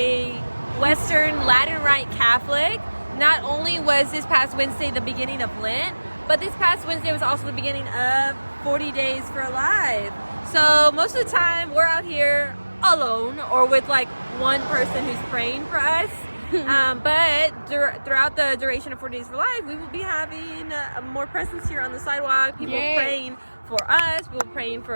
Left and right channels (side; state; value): both; inverted; correlation -1.00